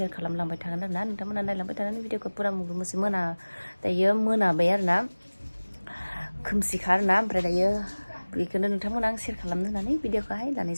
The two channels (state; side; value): inverted; both; correlation -1.00